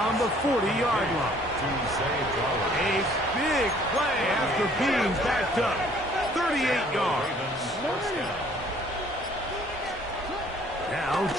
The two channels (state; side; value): normal; both; correlation 0.58